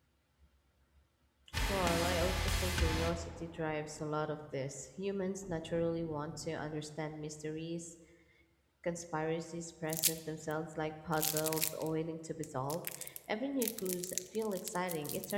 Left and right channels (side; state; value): both; identical; correlation 1.00